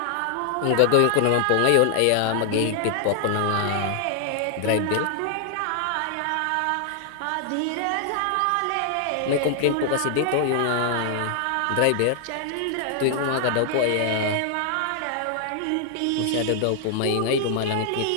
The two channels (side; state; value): both; different; correlation 0.00